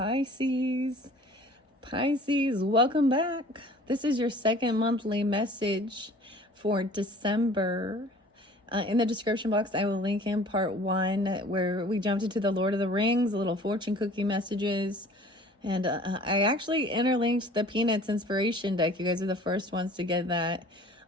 Pisces, welcome back. This is your second monthly message for December. In the description box, I will link in part 1 where we jumped into the Lord of the Rings, little fortune cookie messages. And I actually interlinked the Peanuts inspiration deck. You guys are the first ones to get that.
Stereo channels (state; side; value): normal; both; correlation 0.48